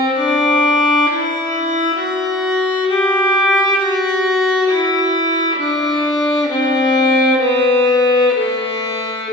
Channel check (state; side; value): normal; both; correlation 0.45